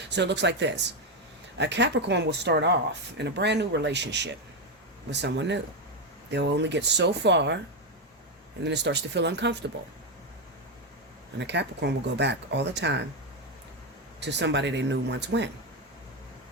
it looks like this. A Capricorn will start off in a brand new relationship with someone new. They'll only get so far, and then it starts to feel uncomfortable. And a Capricorn will go back all the time to somebody they knew once when.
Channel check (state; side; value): normal; both; correlation 0.07